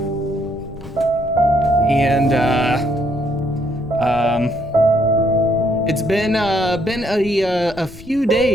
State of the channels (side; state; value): left; noise; rumble, 21 dB below the sound